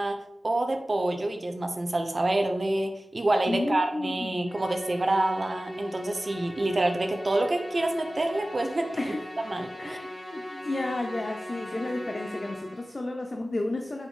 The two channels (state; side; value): normal; both; correlation 0.96